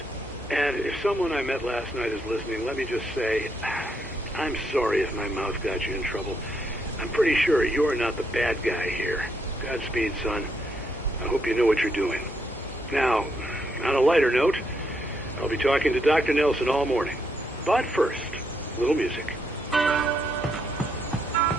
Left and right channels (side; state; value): both; normal; correlation 0.76